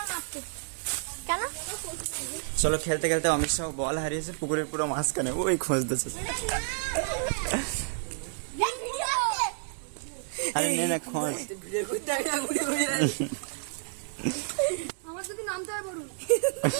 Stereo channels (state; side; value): silent; left; 58 dB below the other